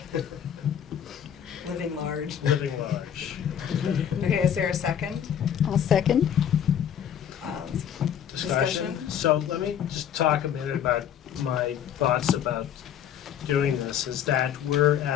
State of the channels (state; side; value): quieter; right; 9.2 dB